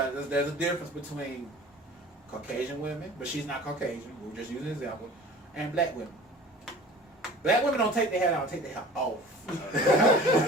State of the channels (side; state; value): both; normal; correlation 0.43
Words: there's a difference between Caucasian women, but she's not Caucasian. We're just using an example, and black women. Black women don't take their hair out, take their hair off.